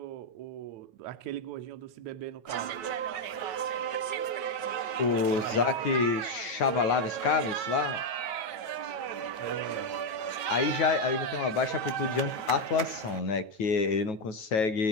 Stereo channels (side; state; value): right; late; 9.1 ms